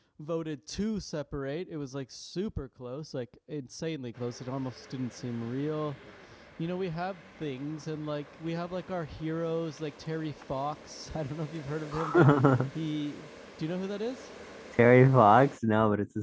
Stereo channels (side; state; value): both; identical; correlation 1.00